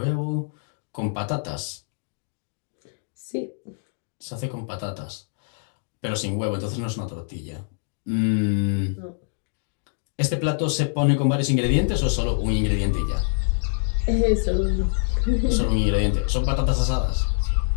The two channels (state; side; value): silent; right; digital silence